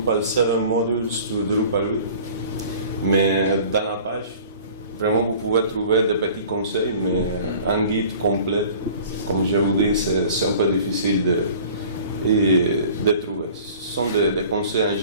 7 Modules to Drupal 8. Mais dans la page, vraiment vous pouvez trouver des petits conseils, mais un guide complet, comme je vous dis, c'est un peu difficile de trouver. Ce sont des conseils en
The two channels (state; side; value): inverted; both; correlation -0.47